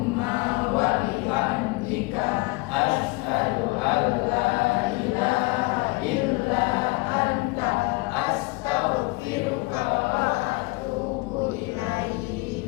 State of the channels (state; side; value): quieter; right; 24.4 dB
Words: wa bihamdika asyhadu an la ilaha illa anta astaghfiruka wa atubu